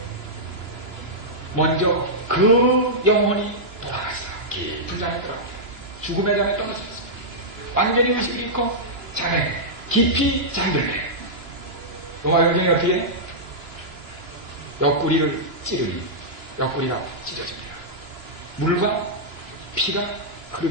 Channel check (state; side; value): late; left; 2.9 ms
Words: 먼저 그 영혼이 돌아갔어. 깊은 잠에 들어갔어. 죽음의 잠에 떨어졌어. 완전히 의식을 잃고 잠에 깊이 잠들네. 로마 영경이 어떻게 해? 옆구리를 찌르니 옆구리가 찢어집니다. 물과 피가